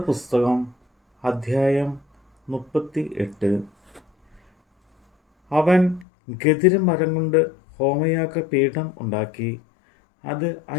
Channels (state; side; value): drops out; right; at 6.1 s